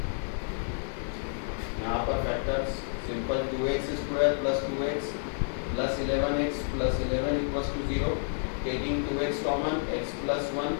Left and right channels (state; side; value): silent; right; 58 dB below the other